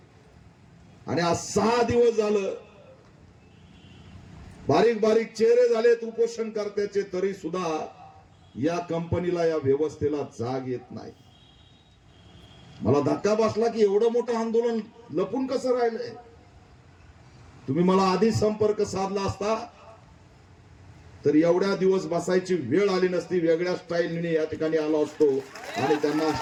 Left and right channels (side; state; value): both; identical; correlation 1.00